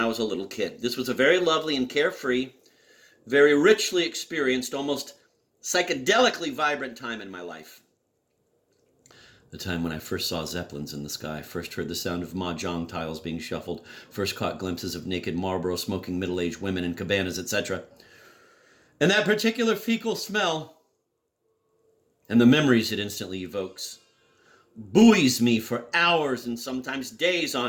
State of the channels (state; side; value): identical; both; correlation 1.00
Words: was a little kid. This was a very lovely and carefree, very richly experienced, almost psychedelically vibrant time in my life. The time when I first saw Zeppelins in the sky, first heard the sound of mahjong tiles being shuffled, first caught glimpses of naked Marlboro smoking middle-aged women in cabanas, etc. And that particular fecal smell, and the memories it instantly evokes, buoys me for hours and sometimes days